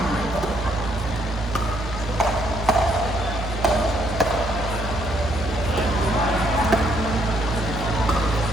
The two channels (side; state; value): both; normal; correlation 0.70